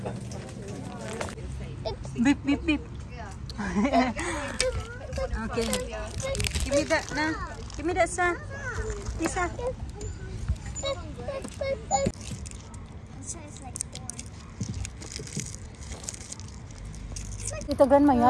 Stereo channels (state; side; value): identical; both; correlation 1.00